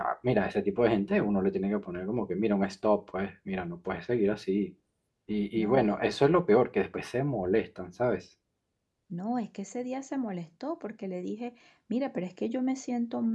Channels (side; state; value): both; identical; correlation 1.00